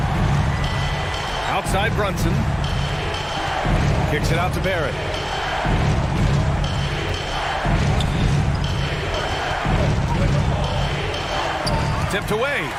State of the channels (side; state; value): both; identical; correlation 1.00